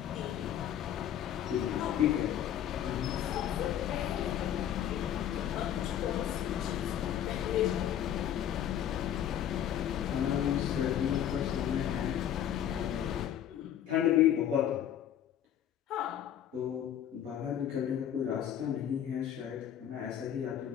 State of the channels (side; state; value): right; quieter; 10.2 dB